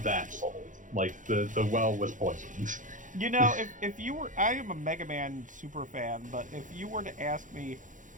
that sold. Like the well was poisoned. You know, if you were... I am a Mega Man super fan, but if you were to ask me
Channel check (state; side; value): late; left; 0.37 ms